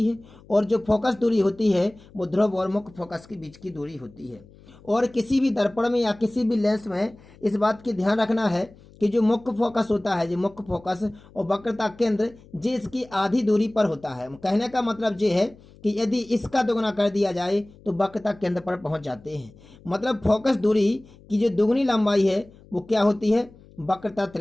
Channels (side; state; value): left; noise; hum, 24 dB below the sound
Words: है। और जो फोकस दूरी होती है वो ध्रुव और मुख्य फोकस के बीच की दूरी होती है। और किसी भी दर्पण में या किसी भी लेंस में इस बात की ध्यान रखना है कि जो मुख्य फोकस होता है, जो मुख्य फोकस और वक्रता केंद्र, जे इसकी आधी दूरी पर होता है। कहने का मतलब ये है कि यदि इसका दोगुना कर दिया जाए तो वक्रता केंद्र पर पहुंच जाते हैं। मतलब फोकस दूरी की जो दुगुनी लंबाई है वो क्या होती है, वक्रता